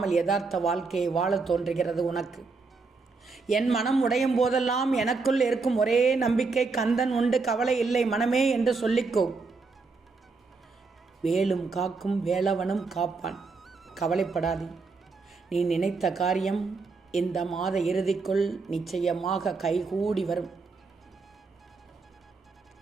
யதார்த்த வாழ்க்கையை வாழ தோன்றுகிறது உனக்கு. என் மனம் உடையும் போதெல்லாம் எனக்குள் இருக்கும் ஒரே நம்பிக்கை, கந்தன் உண்டு, கவலை இல்லை மனமே என்று சொல்லிக்கோ. வேலும் காக்கும் வேலவனும் காப்பான், கவலைப்படாதே. நீ நினைத்த காரியம் இந்த மாத இறுதிக்குள் நிச்சயமாக கைகூடி வரும்.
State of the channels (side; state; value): left; quieter; 4.2 dB